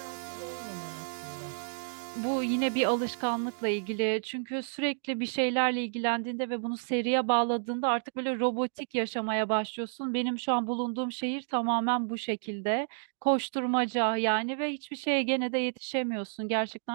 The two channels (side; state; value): left; silent; digital silence